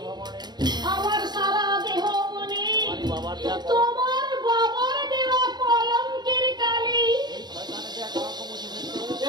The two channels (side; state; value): left; late; 0.20 ms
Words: আমার সারা দেহ মনে তোমার বাবার দেওয়া কলঙ্কের কালি।